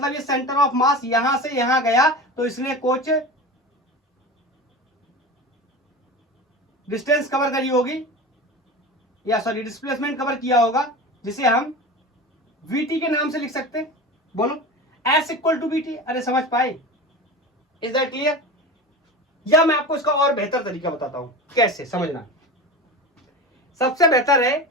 ये सेंटर ऑफ मास यहां से यहां गया तो इसने कुछ डिस्टेंस कवर करी होगी, या सॉरी डिस्प्लेसमेंट कवर किया होगा, जिसे हम VT के नाम से लिख सकते हैं। बोलो, S इक्वल टू VT। अरे समझ पाए? Is that clear? या मैं आपको इसका और बेहतर तरीका बताता हूं कैसे समझना। सबसे बेहतर है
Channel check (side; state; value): both; normal; correlation 0.30